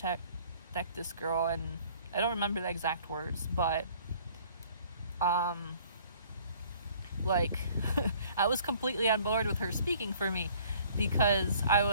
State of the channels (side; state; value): both; inverted; correlation -0.56